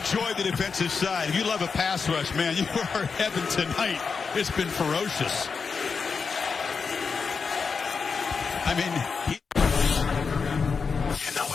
the defensive side, if you love a pass rush, man, you are in heaven tonight. It's been ferocious. I mean, You know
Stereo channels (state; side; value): quieter; right; 5.3 dB